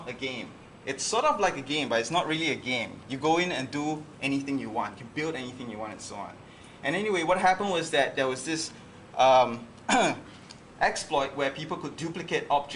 a game. It's sort of like a game, but it's not really a game. You go in and do anything you want. You build anything you want and so on. And anyway, what happened was that there was this exploit where people could duplicate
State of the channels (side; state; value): both; identical; correlation 1.00